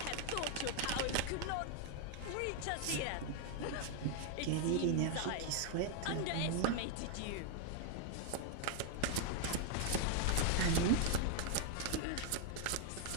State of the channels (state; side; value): different; both; correlation 0.00